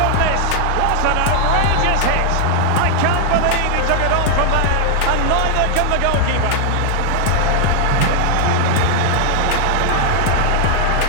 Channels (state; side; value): different; both; correlation 0.00